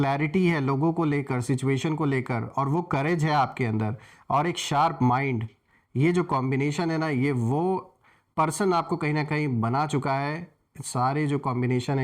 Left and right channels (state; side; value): identical; both; correlation 1.00